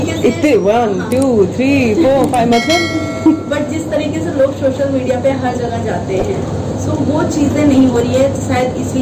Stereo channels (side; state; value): both; identical; correlation 1.00